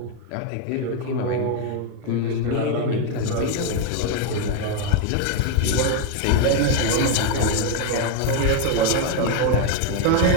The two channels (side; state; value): both; different; correlation 0.01